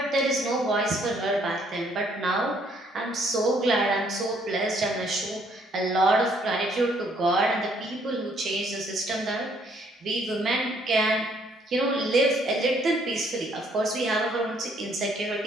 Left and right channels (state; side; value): normal; both; correlation 0.66